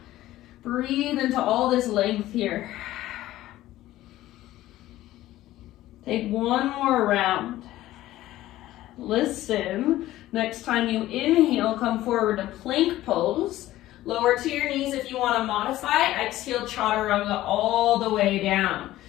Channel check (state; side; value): quieter; right; 15.3 dB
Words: Breathe into all this length here. Take one more round. Listen. Next time you inhale, come forward to plank pose. Lower to your knees if you want to modify. Exhale, chaturanga all the way down.